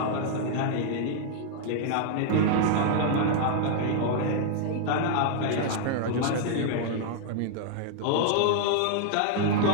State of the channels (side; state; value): both; different; correlation -0.01